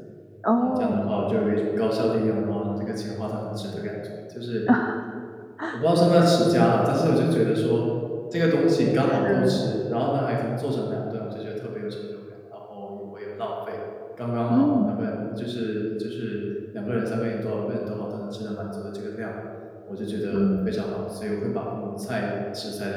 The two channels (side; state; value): both; identical; correlation 1.00